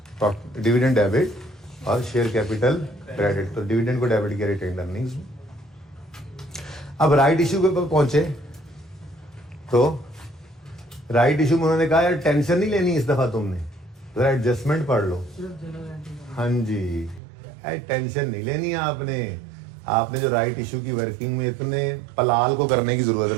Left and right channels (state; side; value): drops out; left; at 17.2 s